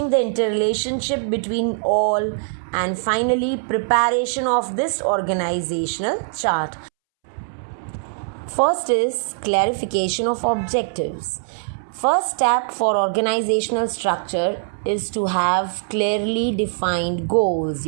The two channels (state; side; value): silent; left; 64 dB below the other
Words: the interrelationship between all, and finally preparation of this organizational chart. First is clarification of objectives. First step for organizational structure is to have clearly defined goals,